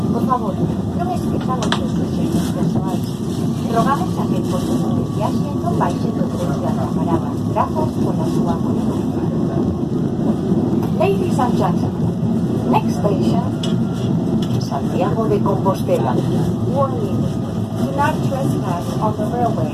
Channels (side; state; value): both; identical; correlation 1.00